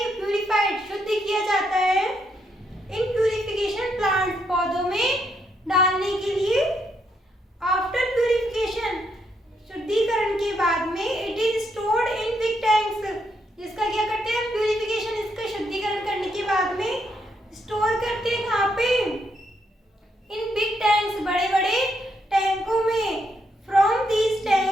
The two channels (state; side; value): normal; both; correlation 0.77